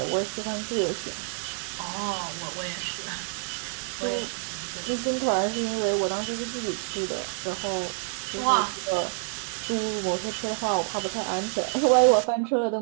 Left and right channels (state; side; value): silent; left; 56 dB below the other